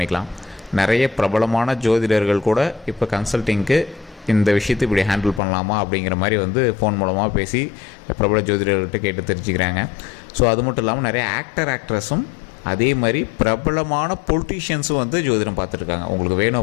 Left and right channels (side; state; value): right; drops out; at 5.4 s